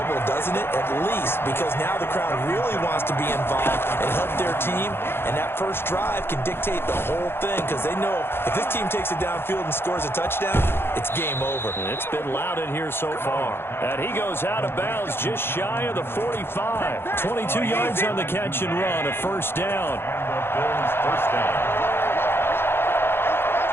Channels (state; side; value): late; right; 0.11 ms